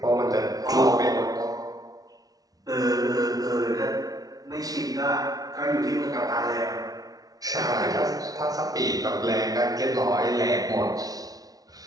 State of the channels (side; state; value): left; late; 0.18 ms